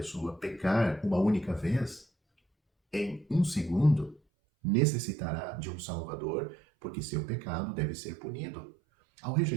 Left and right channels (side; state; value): left; drops out; at 4.2 s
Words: pecar uma única vez, em um segundo, necessitará de um Salvador, porque seu pecado deve ser punido. Ao